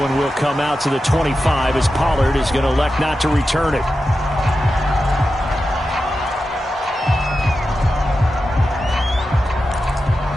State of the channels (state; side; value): normal; both; correlation 0.91